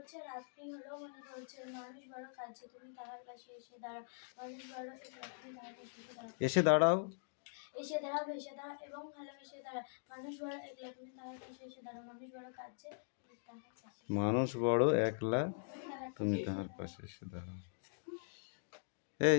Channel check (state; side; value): silent; right; digital silence